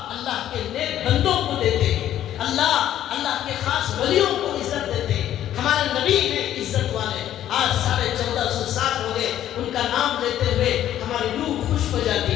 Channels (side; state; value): right; quieter; 11.8 dB